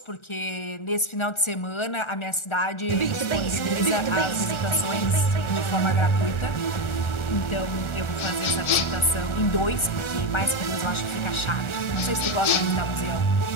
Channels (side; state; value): right; late; 1.4 ms